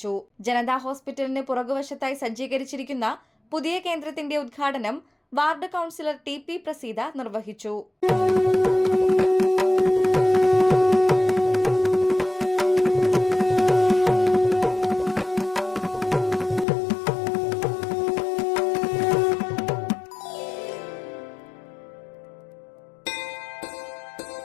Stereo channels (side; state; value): right; drops out; at 16.7 s